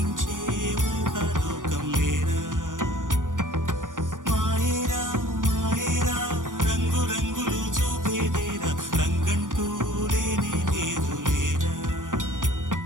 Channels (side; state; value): left; late; 0.88 ms